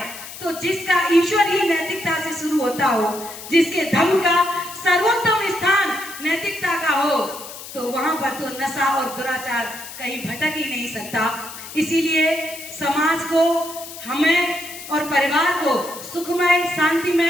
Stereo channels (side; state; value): left; noise; hiss, 13 dB below the sound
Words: तो जिसका ईश्वर ही नैतिकता से शुरू होता हो, जिसके धर्म का सर्वोत्तम स्थान नैतिकता का हो, तो वहां पर तो नशा और दुराचार कहीं भटक ही नहीं सकता। इसीलिए समाज को, हमें और परिवार को सुखमय,